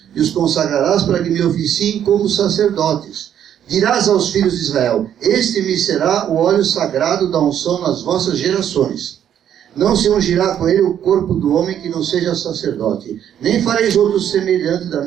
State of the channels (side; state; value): left; quieter; 9.8 dB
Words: e os consagrarás para que me oficiem como sacerdotes. Dirás aos filhos de Israel: este me será o óleo sagrado da unção nas vossas gerações. Não se ungirá com ele o corpo do homem que não seja sacerdote, nem fareis outro semelhante da